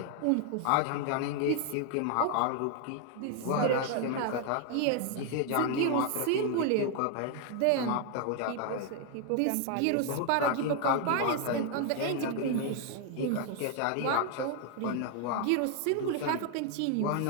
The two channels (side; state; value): both; different; correlation 0.00